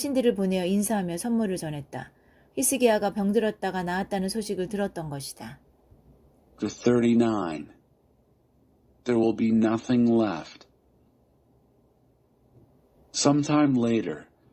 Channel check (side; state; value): both; identical; correlation 1.00